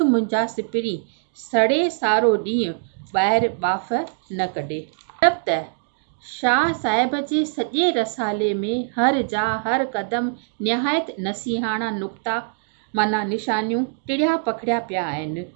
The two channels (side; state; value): left; silent; digital silence